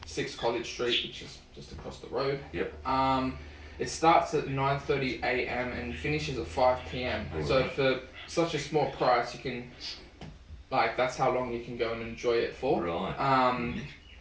6 College Street, which is just across the road. Yep. It starts at 9:30 a.m. and finishes at 5 p.m. All So right. for such a small price, you can, that's how long you can go and enjoy it for. Right.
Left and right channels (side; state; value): both; identical; correlation 1.00